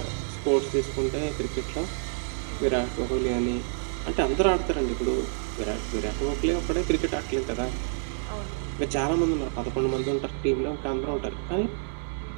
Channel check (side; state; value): left; silent; digital silence